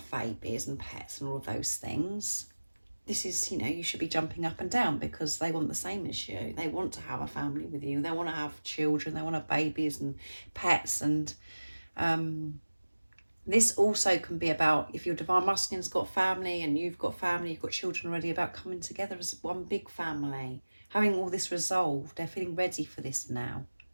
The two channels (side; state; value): both; inverted; correlation -1.00